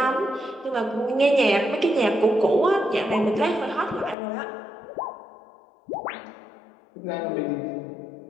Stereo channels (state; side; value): drops out; right; at 4.2 s